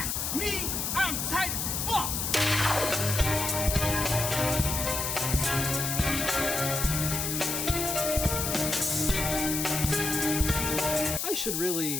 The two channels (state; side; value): noise; left; hiss, 1 dB below the sound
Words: Me, I'm tight as fuck! I should